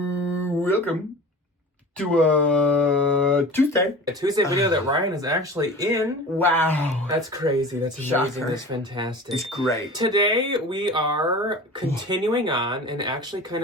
Welcome to Tuesday. A Tuesday video that Ryan is actually in. Wow. That's crazy. That's amazing. Shocker. That's fantastic. It's great. Today, we are continuing on and actually kind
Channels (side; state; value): both; normal; correlation 0.37